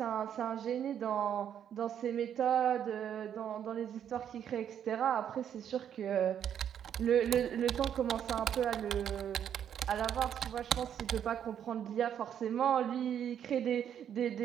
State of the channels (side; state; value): left; quieter; 9.2 dB